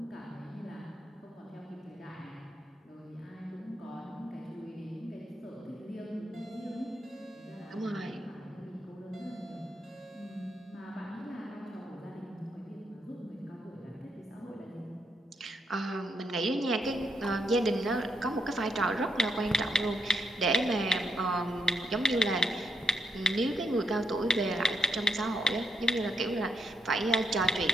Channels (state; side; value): normal; both; correlation 0.78